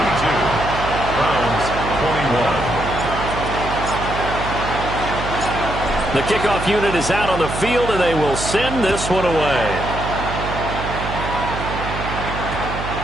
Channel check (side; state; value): right; noise; hum, 7 dB below the sound